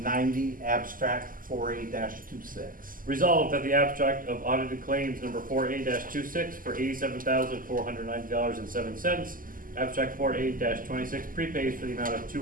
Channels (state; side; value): late; left; 0.41 ms